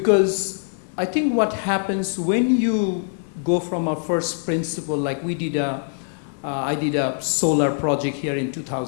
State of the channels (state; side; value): silent; right; digital silence